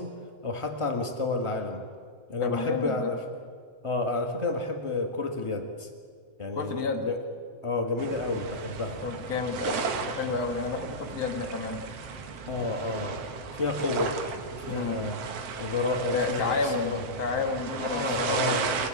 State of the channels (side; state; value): left; late; 7.7 ms